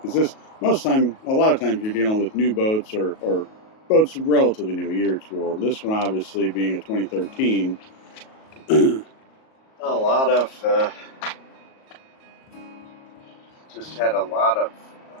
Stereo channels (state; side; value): late; right; 37 ms